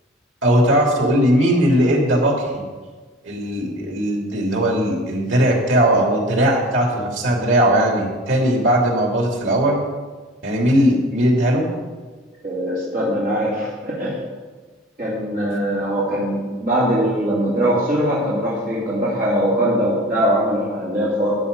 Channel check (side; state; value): both; normal; correlation 0.42